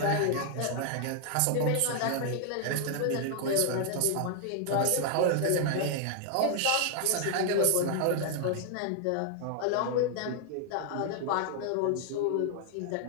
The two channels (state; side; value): different; both; correlation 0.00